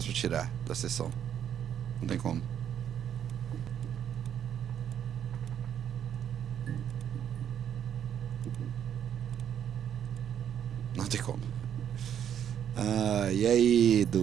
pra tirar da sessão. Não tem como. Não tem como. E aí,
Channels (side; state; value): left; quieter; 9.3 dB